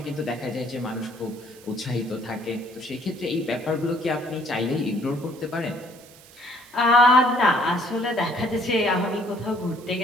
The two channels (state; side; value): noise; right; hiss, 23 dB below the sound